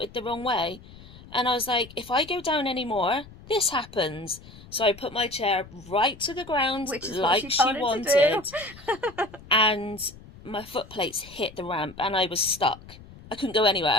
the wrong way," and I was like, "If I go down any more, this happens." So I put my chair right to the ground, which is like what she wanted, and my foot plates hit the ramp, and I was stuck. I couldn't go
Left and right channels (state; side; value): noise; left; rumble, 19 dB below the sound